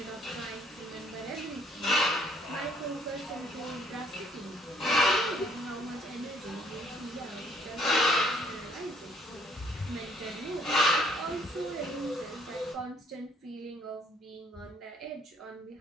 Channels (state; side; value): normal; both; correlation 0.62